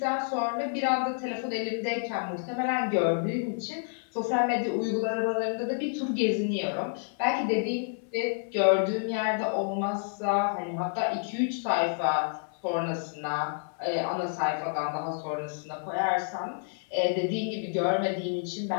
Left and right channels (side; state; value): right; silent; 58 dB below the other